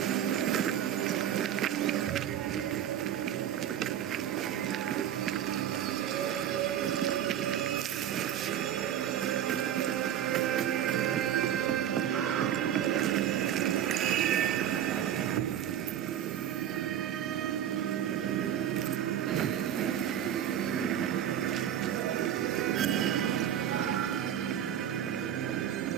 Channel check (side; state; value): left; quieter; 10.3 dB